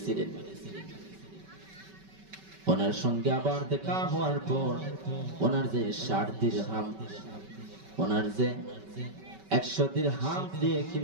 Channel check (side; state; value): left; late; 5.3 ms